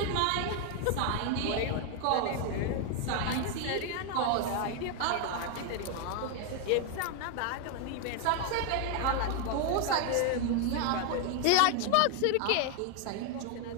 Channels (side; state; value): both; different; correlation 0.00